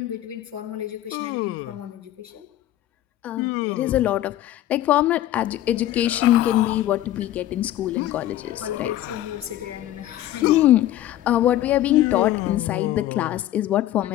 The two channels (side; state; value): right; quieter; 13.5 dB